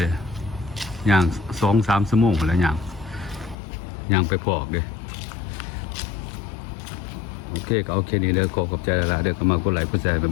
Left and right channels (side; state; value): right; drops out; at 3.6 s